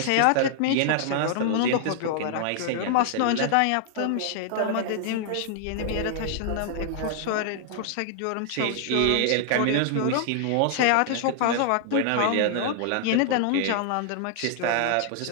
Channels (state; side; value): different; both; correlation -0.01